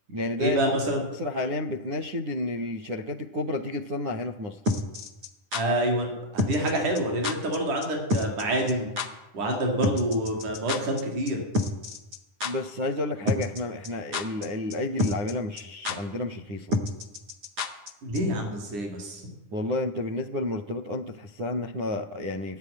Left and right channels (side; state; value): left; late; 9.9 ms